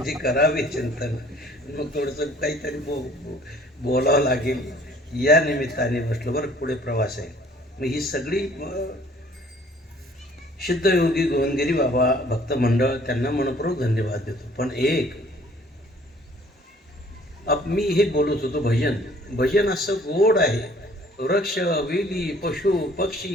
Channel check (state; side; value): normal; both; correlation 0.56